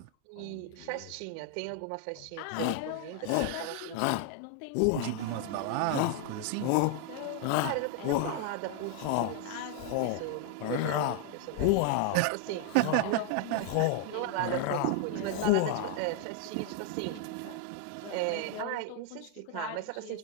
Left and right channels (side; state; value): both; different; correlation 0.00